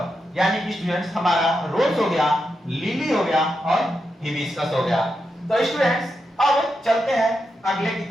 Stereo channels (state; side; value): normal; both; correlation 0.86